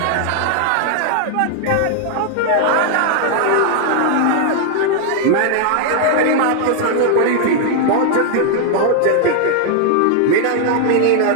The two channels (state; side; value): different; both; correlation 0.00